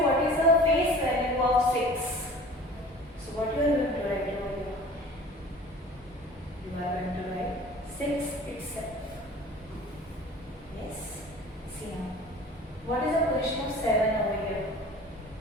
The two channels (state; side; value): normal; both; correlation 0.44